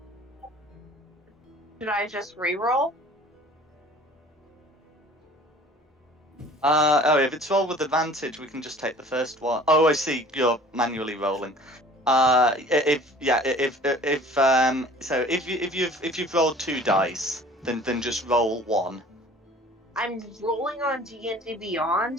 should I just re-roll? If it's roll with advantage, we can just take the first one. Oh, I see. You're manually rolling. If you've rolled 2 dice, then just roll 1. I'm rolling on D&D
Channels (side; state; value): both; normal; correlation 0.48